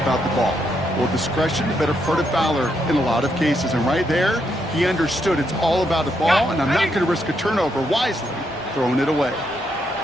the ball. Well, discretion, the better part of valor in a lot of cases. And right there, he understood it's all about the ball, and I'm not going to risk a turnover wisely, throwing it away.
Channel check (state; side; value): normal; both; correlation 0.78